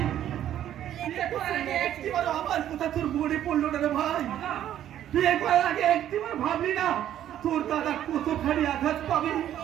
বিয়ে করার আগে একটিবার আমার কথা তোর মনে পড়লো না রে ভাই? বিয়ে করার আগে একটিবার ভাবলি না তোর দাদা কতখানি আঘাত পাবে,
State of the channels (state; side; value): quieter; left; 11.3 dB